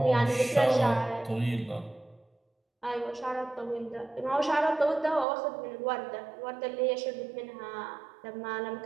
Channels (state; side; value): drops out; left; at 5.2 s